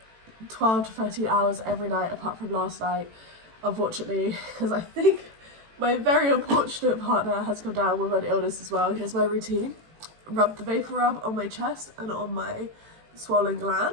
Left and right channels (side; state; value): left; late; 18 ms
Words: 12 to 13 hours every night apart from last night, unfortunately, because I think my very unfortunate partner has come down with an illness as well. Here's my routine. Rub the vapor rub on my chest and on my swollen